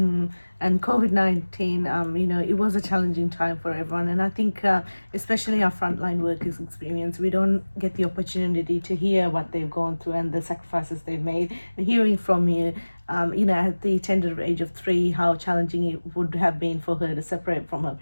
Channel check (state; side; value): inverted; both; correlation -1.00